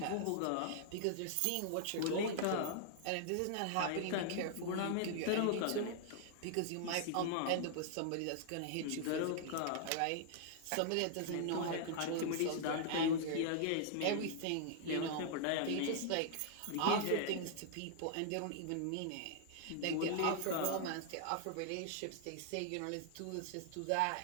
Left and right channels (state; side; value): different; both; correlation -0.01